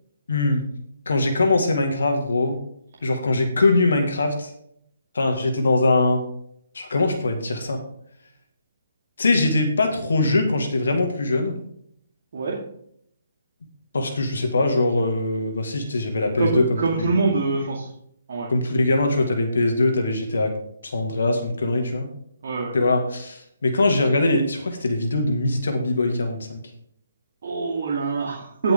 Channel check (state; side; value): inverted; both; correlation -0.78